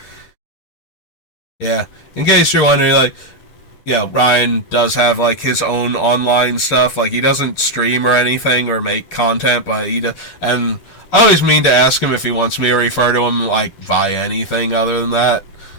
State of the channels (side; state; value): right; late; 10 ms